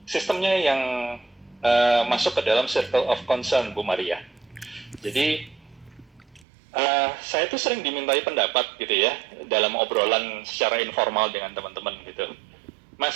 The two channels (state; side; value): drops out; left; at 6.5 s